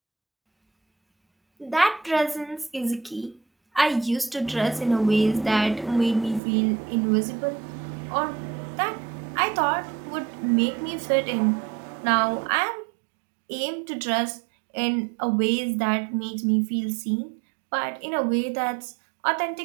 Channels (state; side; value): drops out; left; at 6.4 s